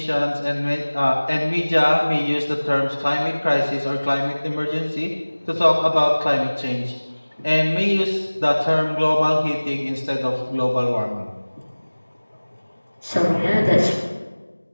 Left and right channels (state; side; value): inverted; both; correlation -1.00